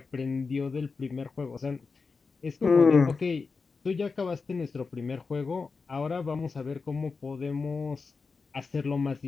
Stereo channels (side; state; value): right; quieter; 4.6 dB